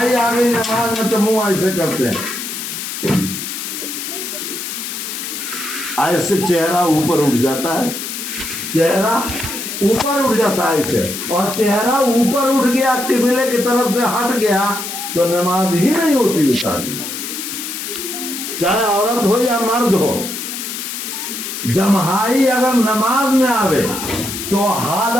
آ گئی نماز میں تو منہ ایسے کرتے ہیں، ایسے چہرہ اوپر اٹھ جاتا ہے، چہرہ اوپر اٹھ جاتا ہے ایسے، اور چہرہ اوپر اٹھ گیا قبلے کی طرف سے ہٹ گیا تو نماز ہی نہیں ہوتی اتار، چاہے عورت ہو یا مرد ہو۔ جماعی اگر نماز میں آوے تو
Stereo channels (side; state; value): left; noise; hiss, 6 dB below the sound